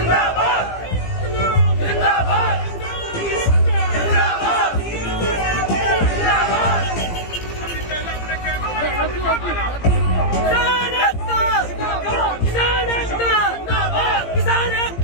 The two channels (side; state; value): right; late; 17 ms